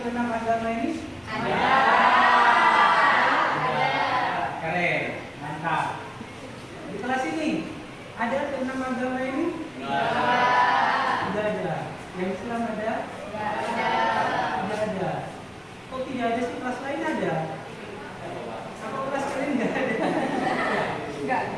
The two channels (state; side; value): identical; both; correlation 1.00